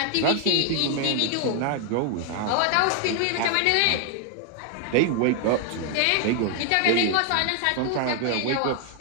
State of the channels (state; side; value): different; both; correlation 0.00